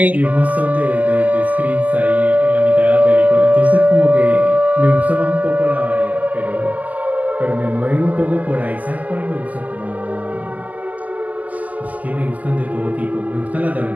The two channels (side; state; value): left; late; 0.071 ms